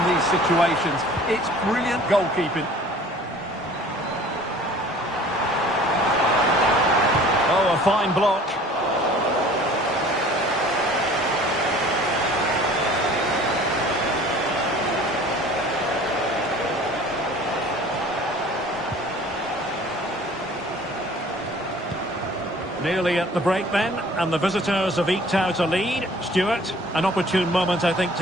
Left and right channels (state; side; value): normal; both; correlation 0.49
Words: these situations. It's brilliant goalkeeping. Oh, a fine block. Nearly at the break then, and the visitors have eked out a lead. Stuart, an opportune moment, I think,